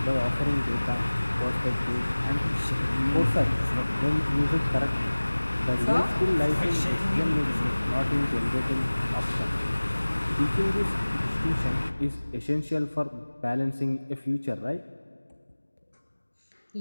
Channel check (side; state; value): both; inverted; correlation -1.00